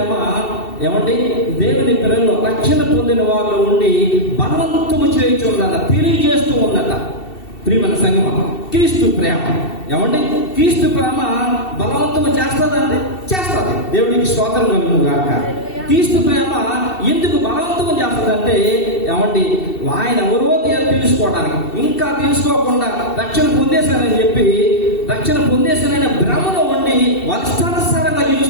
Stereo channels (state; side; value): late; right; 2.7 ms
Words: ఏమంటే దేవుని పిల్లల్లో రక్షణ పొందిన వాళ్ళు ఉండి బలవంతము చేయించుందట, తెలియజేస్తూ ఉందట. ప్రియమైన సంగమం, క్రీస్తు ప్రేమ ఏమంటే క్రీస్తు ప్రేమ బలవంతము చేస్తుందంటే చేస్తుంది. దేవుడికి స్తోత్రం కలుగును గాక. క్రీస్తు ప్రేమ ఎందుకు బలవంతం చేస్తుందంటే ఏమండి? ఆయన ఎవరో తెలుసుకోవడానికి, ఇంకా తెలుసుకోకుండా రక్షణ పొందేశానని చెప్పి రక్షణ పొందేశానని భ్రమలో ఉండి వాళ్ళ ఇష్టానుసారంగా